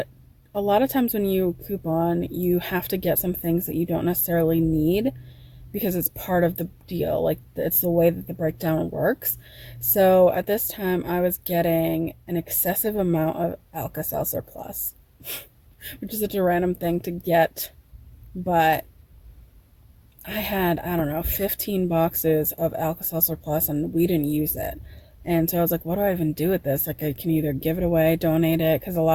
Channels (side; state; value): both; identical; correlation 1.00